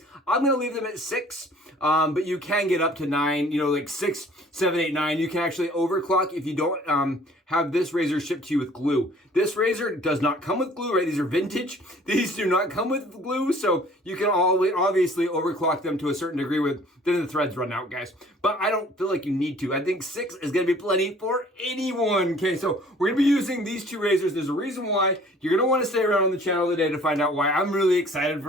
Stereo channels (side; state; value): both; normal; correlation 0.53